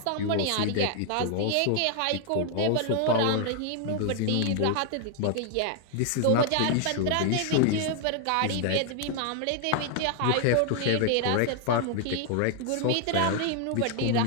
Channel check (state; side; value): different; both; correlation 0.00